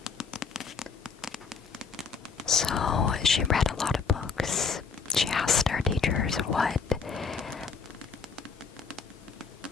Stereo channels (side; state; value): right; quieter; 5.5 dB